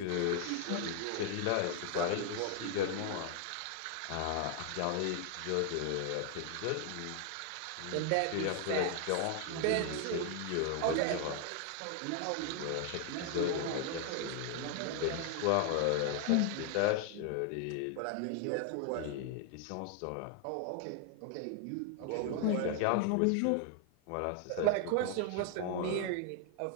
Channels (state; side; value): different; both; correlation 0.00